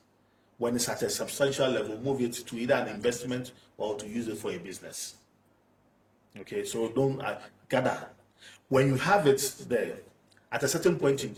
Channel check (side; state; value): both; identical; correlation 1.00